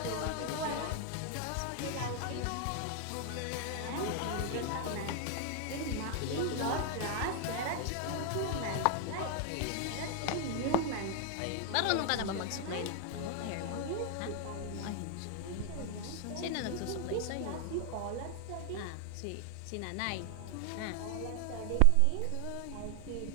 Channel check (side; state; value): both; different; correlation 0.00